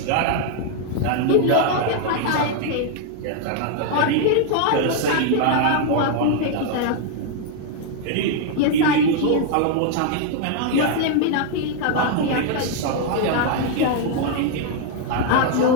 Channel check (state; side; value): different; both; correlation 0.00